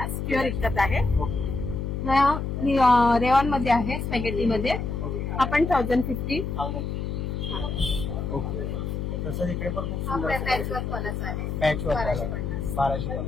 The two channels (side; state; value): left; noise; hum, 3 dB below the sound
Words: प्युअर इक्कत आहे. ओके. रेऑन मध्ये आहे. स्पॅगेटी मध्ये. हा पण 1050. ओके. तसंच इकडे पण खूप हा सुंदर पॅचवर्क वालाच आहे. Patch work 1250.